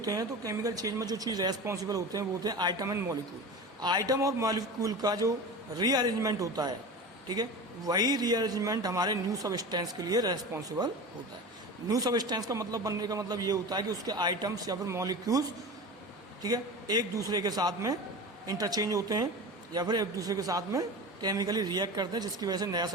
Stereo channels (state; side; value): normal; both; correlation 0.30